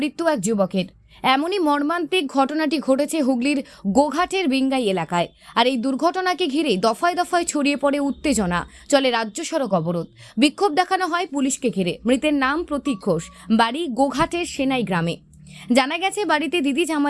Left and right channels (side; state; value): both; identical; correlation 1.00